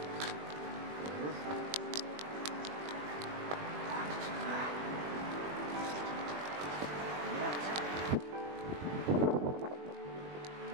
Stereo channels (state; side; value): late; left; 20 ms